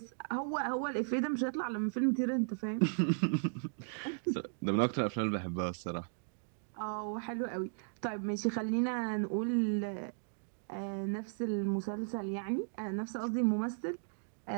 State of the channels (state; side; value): silent; left; digital silence